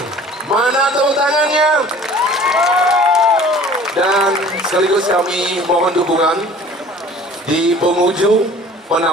mana tepuk tangannya? Dan sekaligus kami mohon dukungan di penghujung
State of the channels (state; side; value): normal; both; correlation 0.47